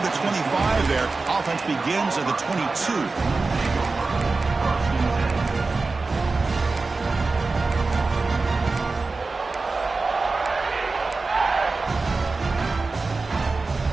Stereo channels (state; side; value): quieter; left; 3.8 dB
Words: the 25 there. Offense begins at the 22.